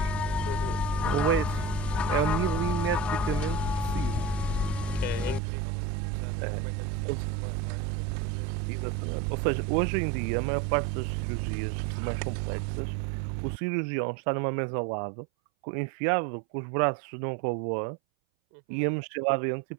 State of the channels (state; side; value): drops out; left; at 5.4 s